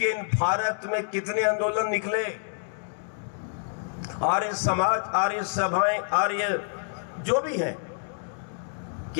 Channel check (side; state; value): right; silent; digital silence